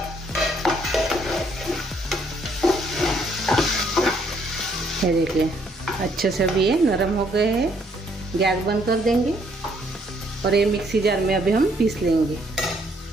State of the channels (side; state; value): both; normal; correlation 0.68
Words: ये देखिए, अच्छे से भी ये नरम हो गए हैं। गैस बंद कर देंगे और ये मिक्सी जार में अभी हम पीस लेंगे।